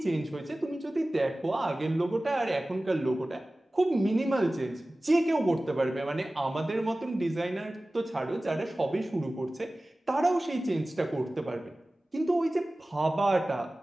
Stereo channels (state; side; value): normal; both; correlation 0.97